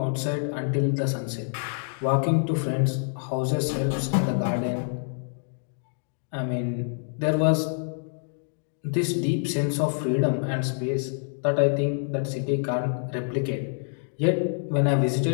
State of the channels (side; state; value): right; silent; digital silence